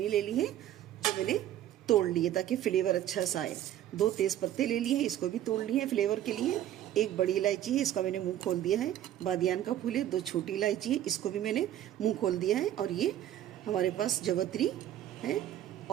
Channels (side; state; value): left; quieter; 12.0 dB